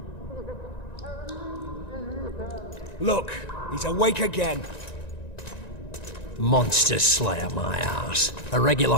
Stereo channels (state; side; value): late; right; 1.9 ms